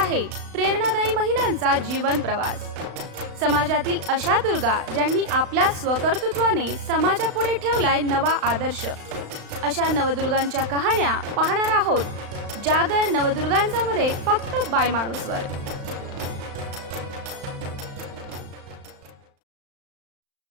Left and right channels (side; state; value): left; late; 35 ms